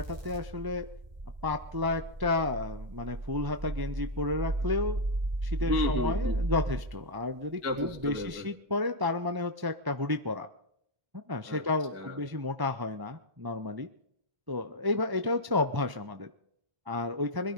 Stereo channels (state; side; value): late; left; 1.1 ms